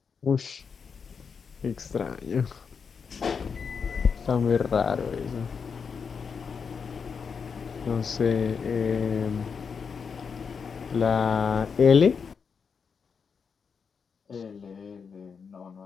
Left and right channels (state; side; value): quieter; right; 6.0 dB